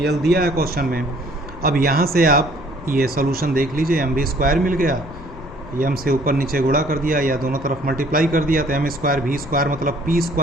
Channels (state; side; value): noise; left; rumble, 19 dB below the sound